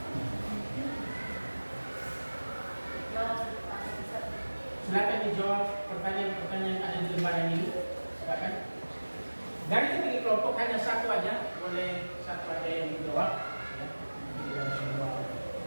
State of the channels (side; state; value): both; inverted; correlation -1.00